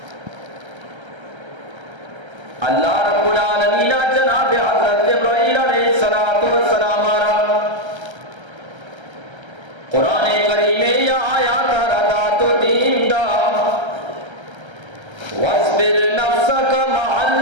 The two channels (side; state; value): left; late; 1.3 ms